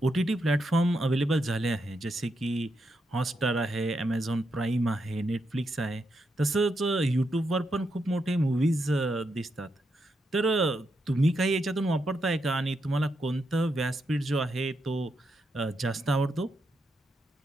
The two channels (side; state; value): both; normal; correlation 0.82